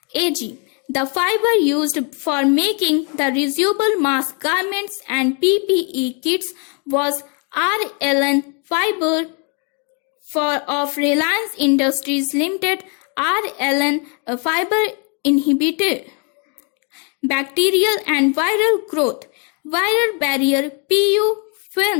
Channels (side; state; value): right; quieter; 37.5 dB